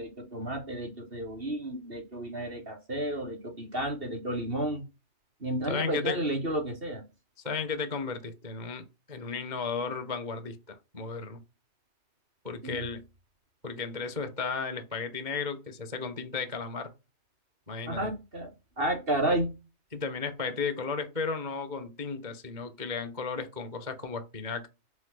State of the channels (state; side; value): late; left; 2.2 ms